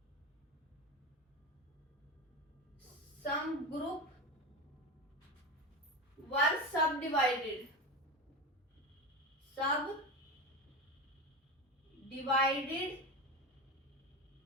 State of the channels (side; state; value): both; normal; correlation 0.22